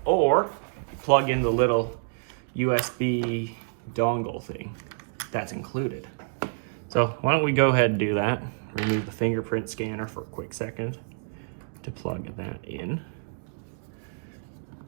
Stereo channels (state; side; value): silent; left; digital silence